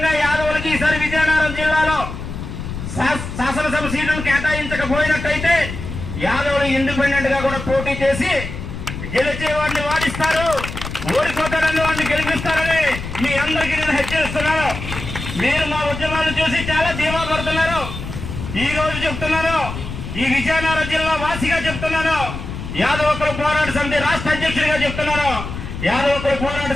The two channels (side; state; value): left; noise; rumble, 8 dB below the sound